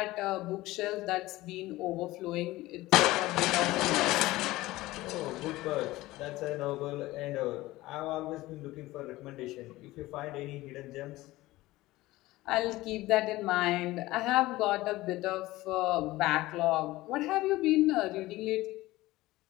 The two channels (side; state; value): right; quieter; 18.3 dB